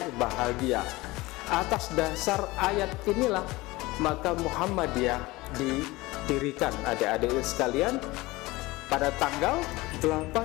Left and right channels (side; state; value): right; quieter; 20.8 dB